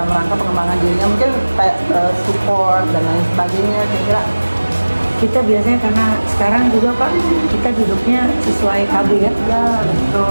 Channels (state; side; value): inverted; both; correlation -1.00